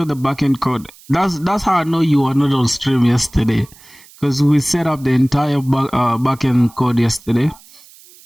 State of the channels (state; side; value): noise; right; hiss, 24 dB below the sound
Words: the backend code. That's how I know you were not on stream yesterday, because we set up the entire backend code yesterday.